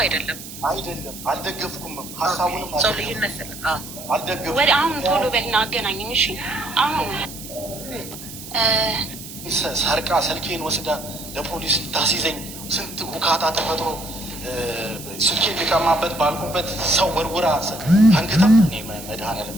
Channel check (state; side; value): noise; right; hiss, 13 dB below the sound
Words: አይደለም። አልደገፍኩም። ሀሳቡንም ሰው ልዩነት አልደገፍኩም። ወደ አሁን ቶሎ በልና አገናኘኝ። እሺ አሁን ሰርቃ ስልኬን ወስዳ ለፖሊስ ታስይዘኝ ስንት ቡካታ ተፈጥሮ ስልኬን ሊቀማበት ባልኩበት ሰው ወርውራ አንግታ እኔ መድኃኒዓለም